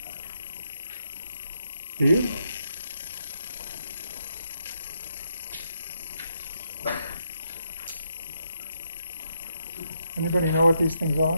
Do you? Anybody know what these things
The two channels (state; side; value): inverted; both; correlation -0.79